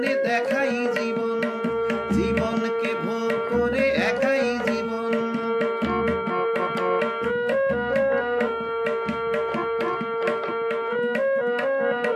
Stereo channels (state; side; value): identical; both; correlation 1.00